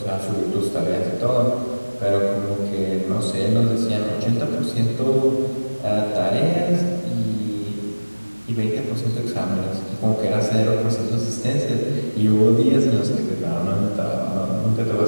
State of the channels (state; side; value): inverted; both; correlation -1.00